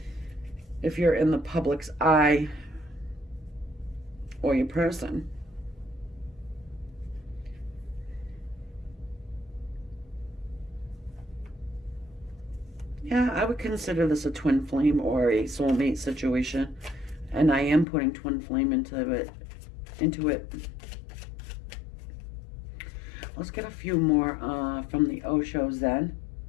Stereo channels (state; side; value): drops out; right; at 17.9 s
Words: If you're in the public's eye or your person. Yeah, I would consider this a twin flame or a soulmate situation. And I am putting twin flame into it. Let's get a few more from the Oshos then.